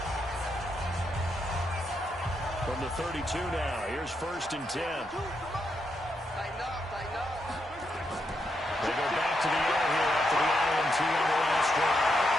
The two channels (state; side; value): normal; both; correlation 0.81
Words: From the 32 now, here's 1st and 10. They go back to the air here after the INT on the last drive.